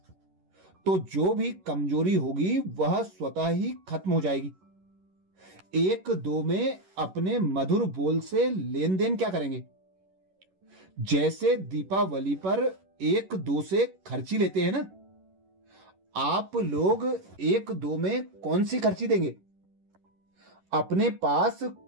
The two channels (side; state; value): left; late; 11 ms